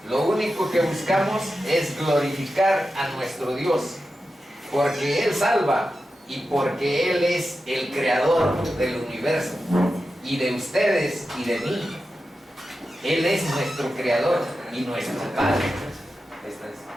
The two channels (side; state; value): both; normal; correlation 0.91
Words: Lo único que buscamos es glorificar a nuestro Dios, porque Él salva y porque Él es el creador del universo y de ustedes y de mí. Él es nuestro creador y nuestro Padre.